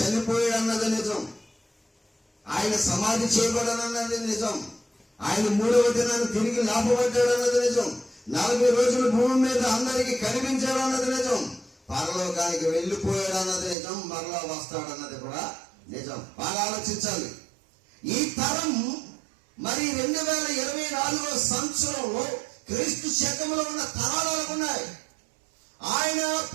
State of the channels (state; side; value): drops out; left; at 13.8 s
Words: అన్నది నిజం. ఆయన సమాధి చేయబడనన్నది నిజం. ఆయన 3వ దినాన్ని తిరిగి లేపబడ్డాడు అన్నది నిజం. 40 రోజులు భూమి మీద అందరికి కనిపించాడు అన్నది నిజం. పరలోకానికి వెళ్ళిపోయాడు అన్నది నిజం. మరలా వస్తాడు అన్నది కూడా నిజం. బాగా ఆలోచించాలి. ఈ తరం మరి 2024 సంవత్సరంలో క్రీస్తు శకంలో ఉన్న తరాలు ఎలాగున్నాయి? ఆయన